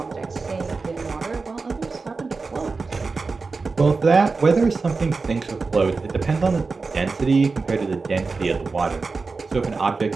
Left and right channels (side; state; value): left; quieter; 4.2 dB